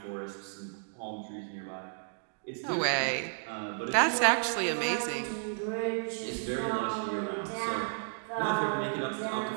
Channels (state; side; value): silent; left; digital silence